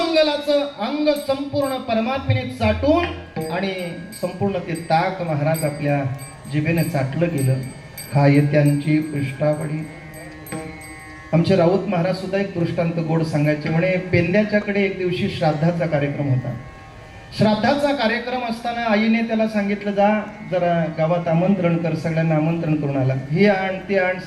अंग संपूर्ण परमात्म्याने चाटून आणि संपूर्ण ते ताक महाराज आपल्या जिभेने चाटलं गेलं. खाय त्यांची पृष्ठावडी. आमचे राऊत महाराज सुद्धा एक दृष्टांत गोड सांगायचे. म्हणे पेंद्याच्याकडे एक दिवशी श्राद्धाचा कार्यक्रम होता. श्राद्धाचा कार्यक्रम असताना आईने त्याला सांगितलं, जा जरा गावात आमंत्रण कर, सगळ्यांना आमंत्रण करून आला. हे आण ते आण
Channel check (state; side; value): identical; both; correlation 1.00